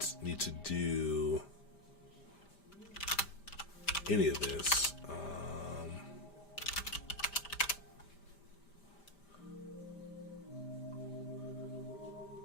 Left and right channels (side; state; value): right; late; 5.0 ms